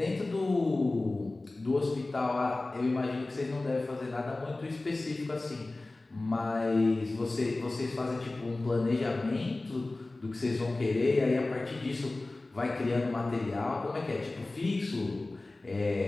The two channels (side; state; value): right; quieter; 3.0 dB